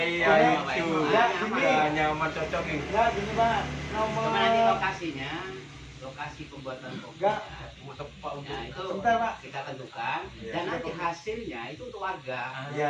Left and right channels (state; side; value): identical; both; correlation 1.00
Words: Pak. itu. Ya, ini. Ya, nyaman cocok ini. Ya, gini, Pak. Nomor Kemana nanti lokasinya? Lokasi pembuatan kompos. Enggak. Mau tepat untuk Nah, itu Sebentar, Pak. kita tentukan Iya. dan nanti hasilnya itu untuk warga.